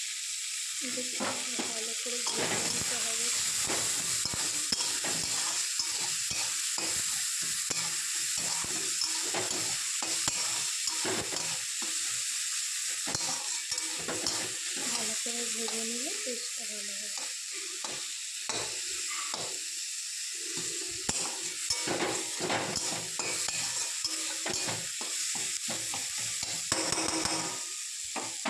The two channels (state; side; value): identical; both; correlation 1.00